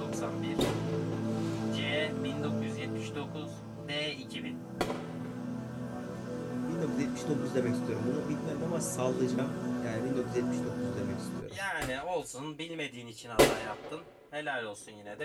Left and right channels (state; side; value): identical; both; correlation 1.00